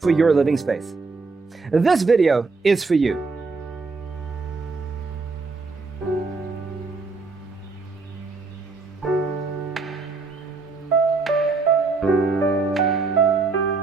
your living space? This video is for you.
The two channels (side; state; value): left; quieter; 4.1 dB